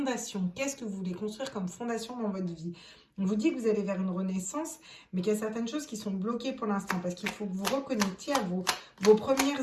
Qu'est-ce que vous voulez construire comme fondation dans votre vie? On vous dit que vous allez vers une renaissance, mais qu'il y a certaines choses qui sont bloquées pour l'instant, parce qu'il faut que vous reconnectiez à vos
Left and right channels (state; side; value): identical; both; correlation 1.00